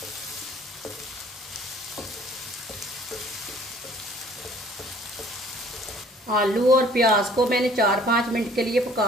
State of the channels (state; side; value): normal; both; correlation 0.55